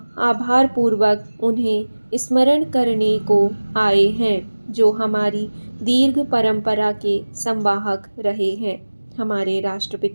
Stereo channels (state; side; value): inverted; both; correlation -1.00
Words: आभारपूर्वक उन्हें स्मरण करने को आए हैं जो हमारी दीर्घ परंपरा के संवाहक रहे हैं। हमारे